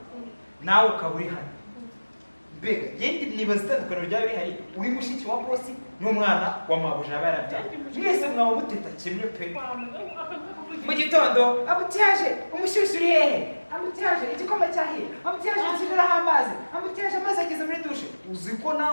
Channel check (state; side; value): inverted; both; correlation -1.00